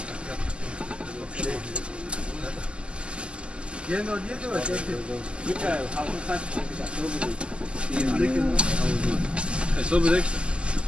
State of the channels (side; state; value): left; late; 0.052 ms